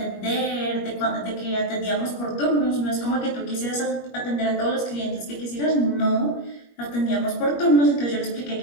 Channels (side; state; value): right; late; 21 ms